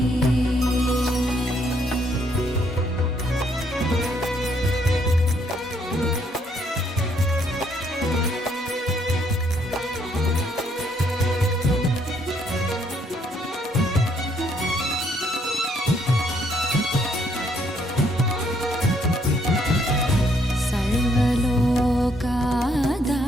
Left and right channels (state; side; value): normal; both; correlation 0.69